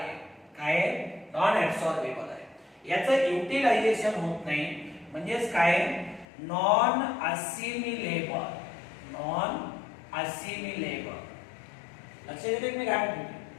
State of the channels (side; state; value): right; drops out; at 6.2 s